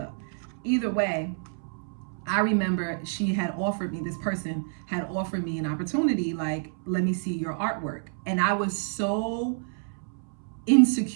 Either way, I remember this person had offered me an opportunity, like, let me see your artwork. And I was so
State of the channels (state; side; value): silent; left; 59 dB below the other